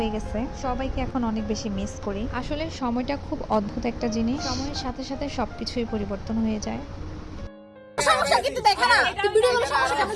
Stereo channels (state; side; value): identical; both; correlation 1.00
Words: গেছে। সবাইকে এখন অনেক বেশি মিস করি। আসলে সময়টা খুব অদ্ভুত একটা জিনিস, সময়ের সাথে সাথে সবকিছুই পরিবর্তন হয়ে যায়। সমস্যা কিন্তু দেখা না তুই ভিডিও করে সমস্যা কেন